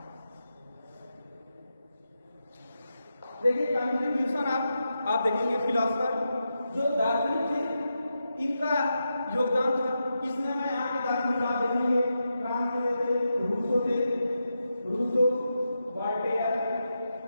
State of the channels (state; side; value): inverted; both; correlation -0.87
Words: देखिए कंट्रीब्यूशन आप देखेंगे फिलोसफर जो दार्शनिक थे इनका योगदान था। इसमें मैं यहाँ के दार्शनिक आप देखेंगे फ्रांस के थे, रूसो, वॉल्टेयर,